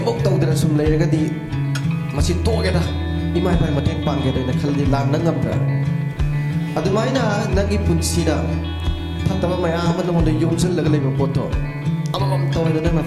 mok tau dra sum le ga di masi to ga da imai pa mating pang ge de na khal di lan na ngam tra adumaina nangi punsida fataba mayam amon yumsel laga leba poto amam toy na na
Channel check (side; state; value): both; identical; correlation 1.00